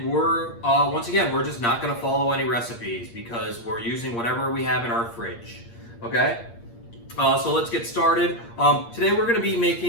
we're once again, we're just not going to follow any recipes because we're using whatever we have in our fridge. Okay, so let's get started. Today we're going to be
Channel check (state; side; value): late; right; 8.6 ms